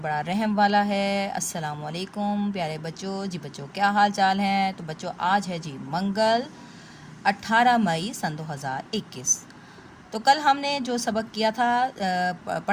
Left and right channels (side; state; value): both; identical; correlation 1.00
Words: रहम वाला है। अस्सलाम वालेकुम प्यारे बच्चों। जी बच्चों, क्या हाल चाल हैं? तो बच्चों, आज है जी मंगल 18 मई सन 2021। तो कल हमने जो सबक किया था,